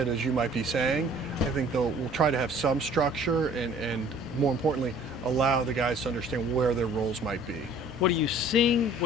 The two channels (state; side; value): normal; both; correlation 0.52